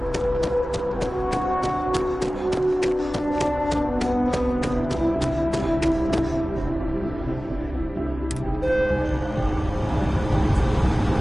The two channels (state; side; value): normal; both; correlation 0.97